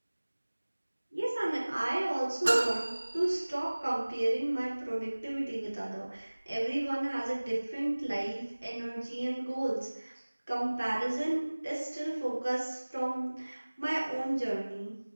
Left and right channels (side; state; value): both; inverted; correlation -1.00